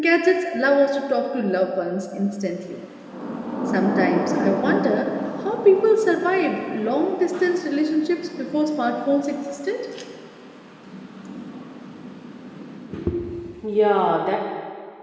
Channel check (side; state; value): both; identical; correlation 1.00